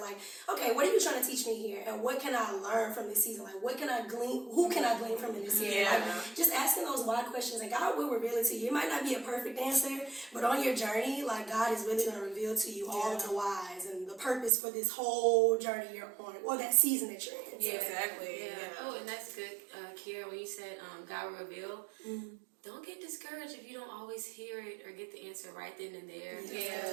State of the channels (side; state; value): left; drops out; at 14.5 s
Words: okay, what are you trying to teach me here? And what can I learn from this season? Like, what can I glean? Who can I glean from in this season? Like, just asking those why questions. And God will reveal it to you. It might not be a perfect answer, but on your journey, like, God is really going to reveal to you all of the whys and the purpose for this whole journey you're on, or that season that you're in. Yeah, exactly. Yeah. Oh, and that's good, Kiera, when you said God will reveal, don't get discouraged if you don't always hear it or get the answer right then and there.